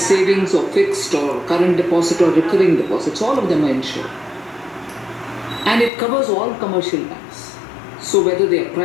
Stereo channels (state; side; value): drops out; right; at 5.9 s